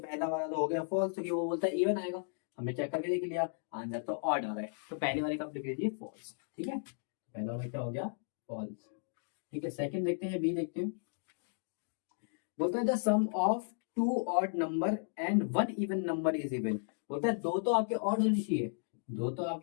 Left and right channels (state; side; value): silent; right; digital silence